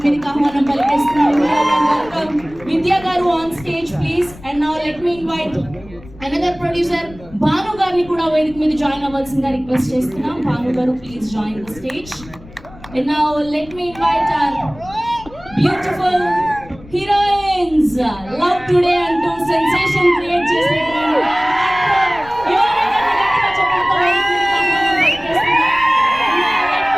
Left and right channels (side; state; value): left; noise; rumble, 20 dB below the sound